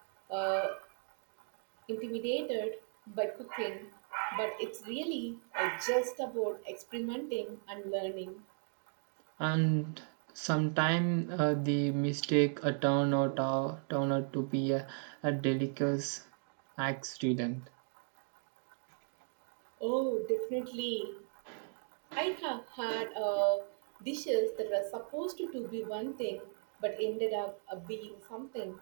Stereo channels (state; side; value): silent; left; 53 dB below the other